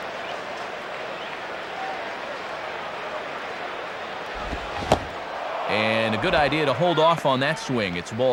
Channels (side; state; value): both; identical; correlation 1.00